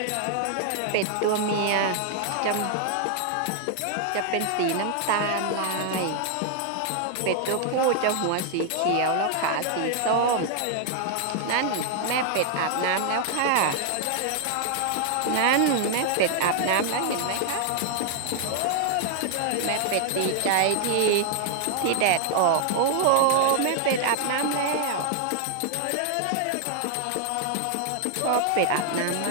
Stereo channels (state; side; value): different; both; correlation 0.00